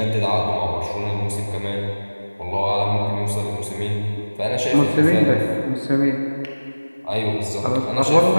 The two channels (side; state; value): both; inverted; correlation -1.00